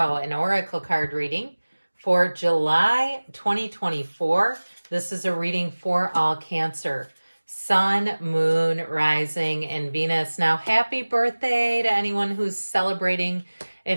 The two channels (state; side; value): inverted; both; correlation -1.00